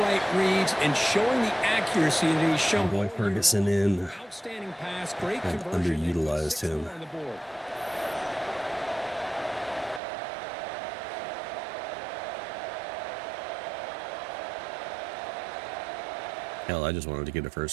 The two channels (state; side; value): drops out; left; at 10.0 s